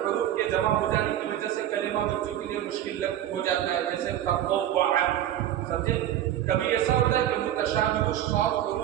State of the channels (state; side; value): quieter; left; 11.8 dB